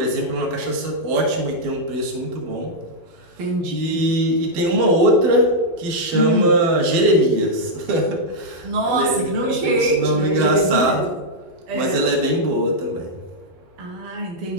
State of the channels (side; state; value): left; late; 12 ms